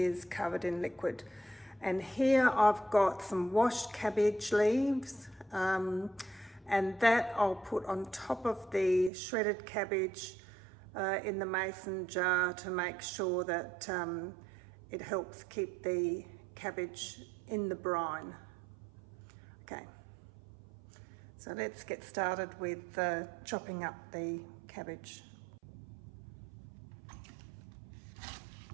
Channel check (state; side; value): drops out; left; at 9.1 s